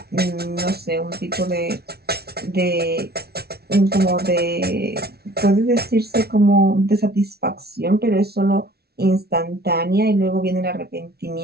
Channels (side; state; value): left; late; 0.46 ms